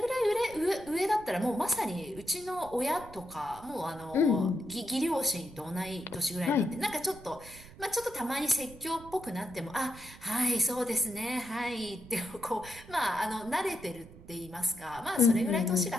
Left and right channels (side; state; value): right; noise; rumble, 19 dB below the sound